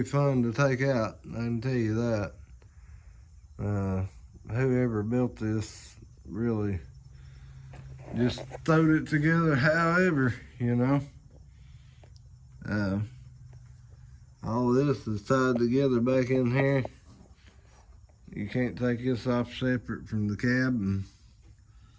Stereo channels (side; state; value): both; identical; correlation 1.00